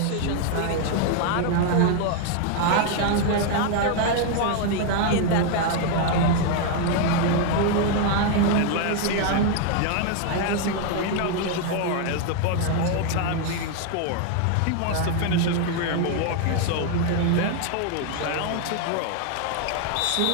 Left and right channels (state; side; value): different; both; correlation 0.00